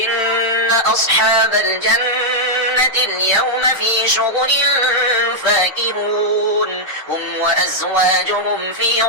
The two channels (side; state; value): both; normal; correlation -0.05